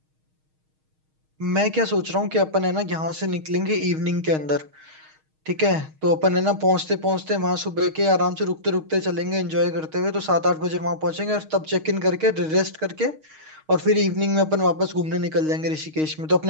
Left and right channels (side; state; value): left; late; 6.4 ms